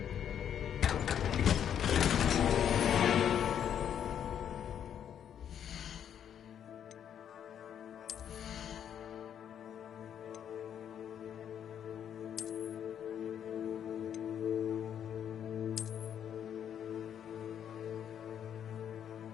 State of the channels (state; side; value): quieter; right; 9.1 dB